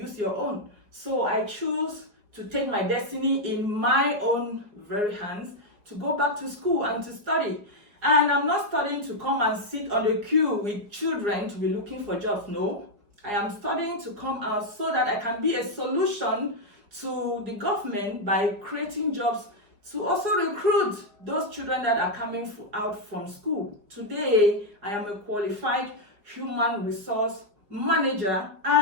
your own. So I choose to take my destiny in my own very hands, to go back to school and to study. And I'm not studying to come and sit on the queue with children to be looking for jobs. No, I am studying to come out so that I can be a solution to the government by creating jobs to also recruit those children that are coming out from school. Today, I am a qualified human resource manager,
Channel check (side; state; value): left; late; 4.7 ms